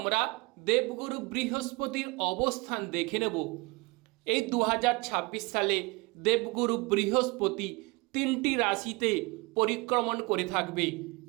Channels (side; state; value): left; quieter; 25.9 dB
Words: দেবগুরু বৃহস্পতির অবস্থান দেখে নেব। এই 2026 সালে দেবগুরু বৃহস্পতি 3টি রাশিতে পরিক্রমণ করে থাকবে।